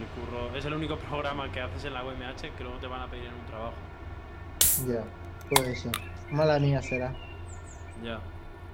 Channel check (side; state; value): both; identical; correlation 1.00